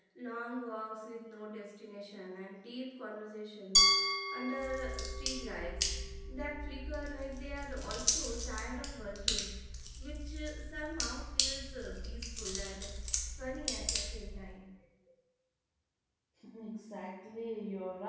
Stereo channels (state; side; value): identical; both; correlation 1.00